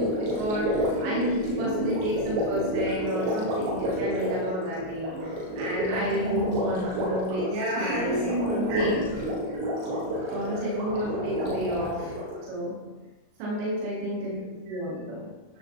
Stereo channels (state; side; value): late; left; 38 ms